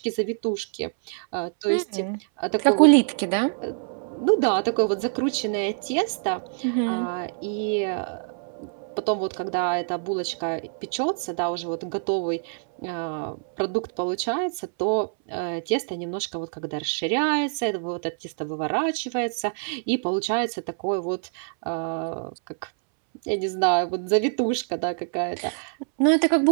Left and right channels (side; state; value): left; silent; 61 dB below the other